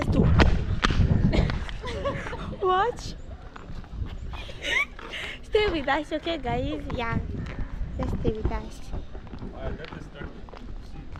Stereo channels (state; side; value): identical; both; correlation 1.00